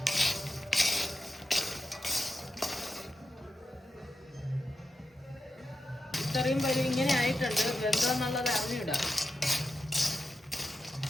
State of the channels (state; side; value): normal; both; correlation 0.88